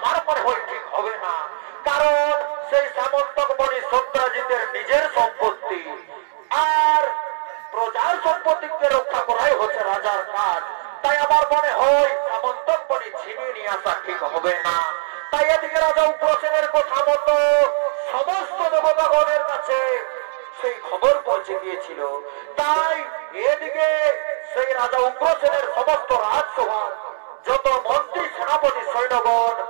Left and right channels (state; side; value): silent; left; digital silence